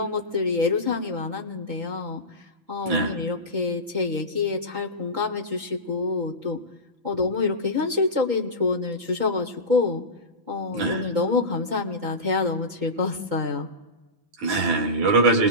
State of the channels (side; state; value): left; late; 6.0 ms